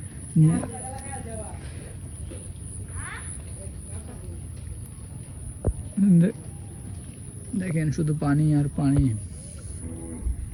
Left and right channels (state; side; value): identical; both; correlation 1.00